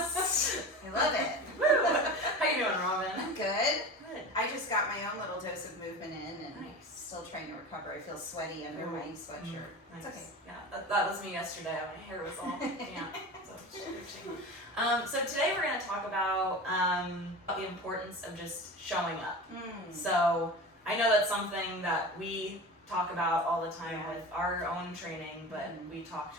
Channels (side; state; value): both; normal; correlation 0.31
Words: I love it. Woo! How you doing, Robin? I'm good. Good. I just got my own little dose of movement in and Nice. still trying to recover. I feel sweaty under my sweatshirt. Nice. It's okay. Yeah, that was me yesterday. My hair was all damp. So today we're going to talk about the importance of just showing up. So I know that's something that we talk about all the time with our own training, but we talk